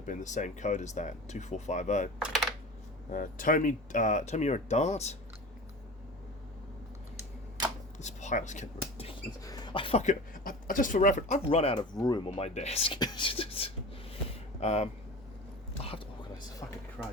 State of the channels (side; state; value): both; normal; correlation 0.34